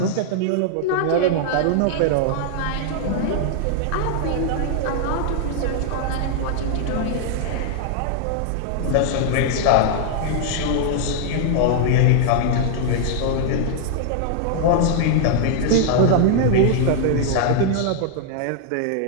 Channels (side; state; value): both; different; correlation -0.01